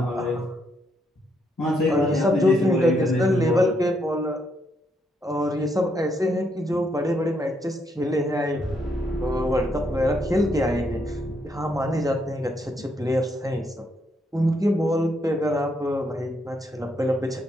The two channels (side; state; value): both; normal; correlation 0.76